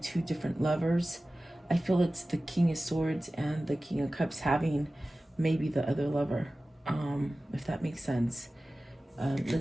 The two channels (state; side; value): normal; both; correlation 0.96